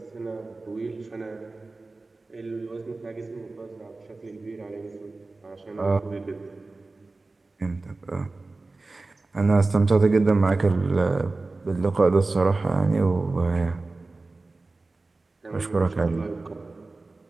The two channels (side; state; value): left; quieter; 3.4 dB